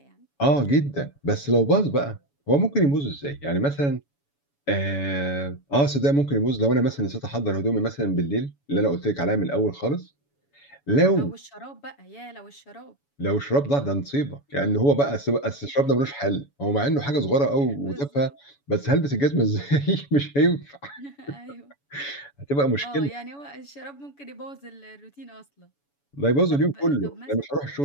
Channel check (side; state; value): right; late; 7.1 ms